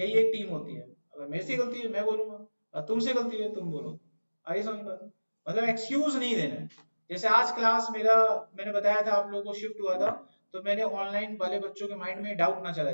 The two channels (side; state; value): both; inverted; correlation -1.00